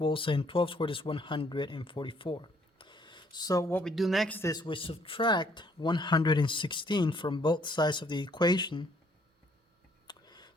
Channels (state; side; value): normal; both; correlation 0.65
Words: and 12 squared is 144. So what we do next is we subtract 116 from both sides of the equation.